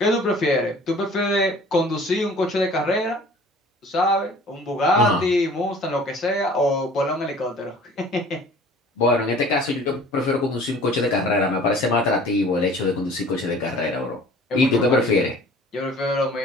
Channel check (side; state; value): both; normal; correlation 0.48